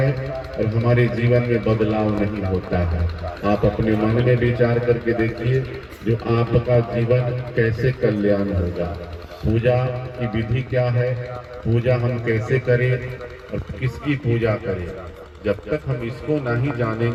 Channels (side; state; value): both; identical; correlation 1.00